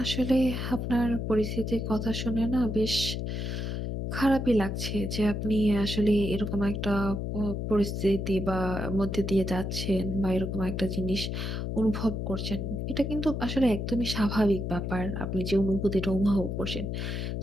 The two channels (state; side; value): noise; left; hum, 3 dB below the sound